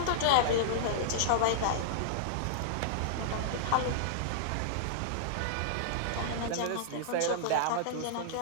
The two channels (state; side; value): different; both; correlation -0.02